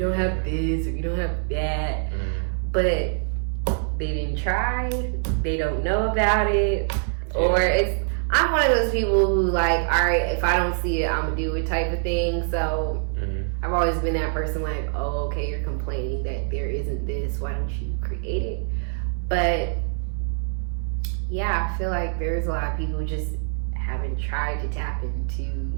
have this, or we don't have that. But they didn't try, they don't know about it, or I'm one of those people who like, all right, if I don't see it, I'm gonna do it type of thing. So I've always been that person like, oh, okay, you're complaining that there isn't this, why don't you create it? But yeah, I feel like there's a lot of people who just haven't tried to tap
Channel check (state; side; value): silent; left; 61 dB below the other